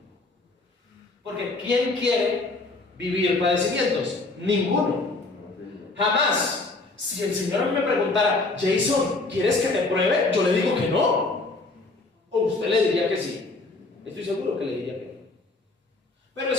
Porque ¿quién quiere vivir padecimientos? Ninguno. Jamás. Si el Señor a mí me preguntara, Jason, ¿quieres que te pruebe? Yo le digo que no. O usted le diría que sí. Estoy seguro que le diría que no. Pero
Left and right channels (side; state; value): right; quieter; 3.3 dB